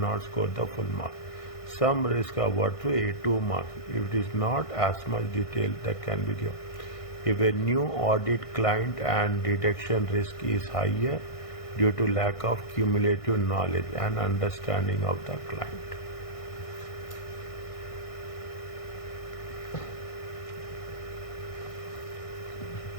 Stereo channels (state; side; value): late; right; 1.6 ms